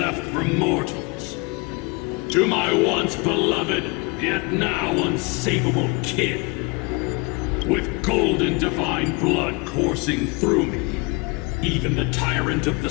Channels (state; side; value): quieter; right; 28.3 dB